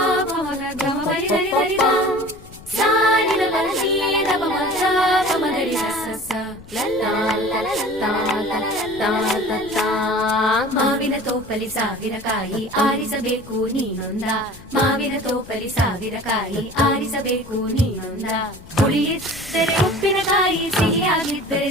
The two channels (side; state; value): left; noise; rumble, 19 dB below the sound